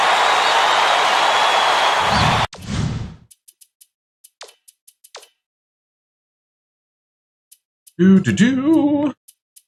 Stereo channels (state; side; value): identical; both; correlation 1.00